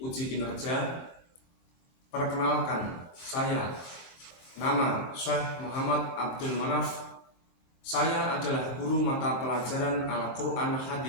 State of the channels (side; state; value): right; late; 23 ms